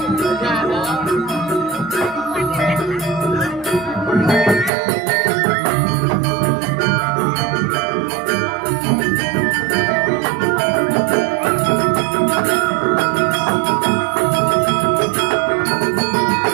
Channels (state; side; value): drops out; left; at 4.7 s